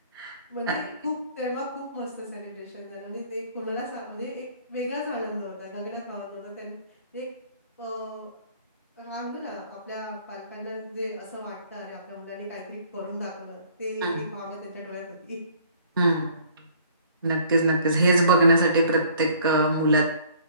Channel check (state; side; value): inverted; both; correlation -0.56